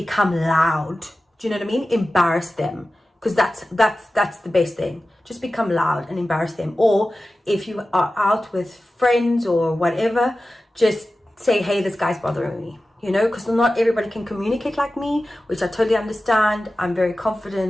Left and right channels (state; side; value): normal; both; correlation 0.95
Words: loud. Do you know what I mean? Embarrass them. because that's the best thing. Just become loud and embarrass them. Or if you are out with friends or whatever, just say, hey, this guy's bothering me, you know, because not everybody can communicate like me, which I totally understand. I'm very